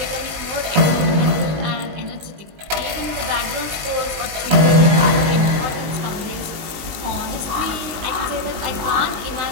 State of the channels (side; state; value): left; late; 20 ms